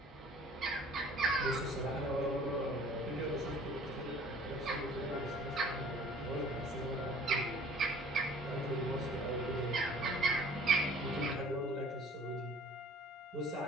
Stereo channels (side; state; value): both; normal; correlation 0.51